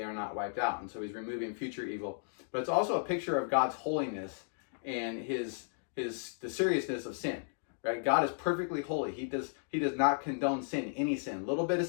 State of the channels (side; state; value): right; silent; digital silence